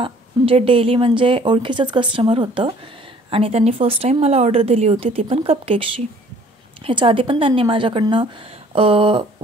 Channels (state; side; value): normal; both; correlation 0.55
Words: डेली ओळखीचंच कस्टमर होतं आणि त्यांनी फर्स्ट टाईम मला ऑर्डर दिली होती, ती पण कपकेक्सची। ह्याच्या आधी पण त्यांनी माझ्याकडनं